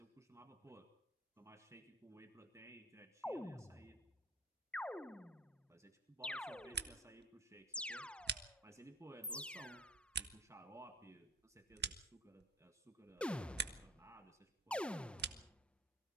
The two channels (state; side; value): normal; both; correlation 0.44